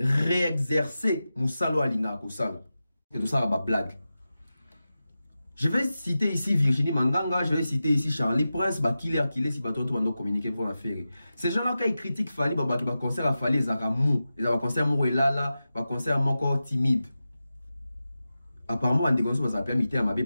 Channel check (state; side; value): inverted; both; correlation -0.93